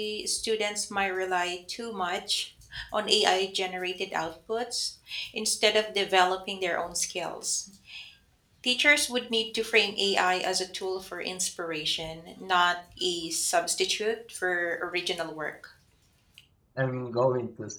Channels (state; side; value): identical; both; correlation 1.00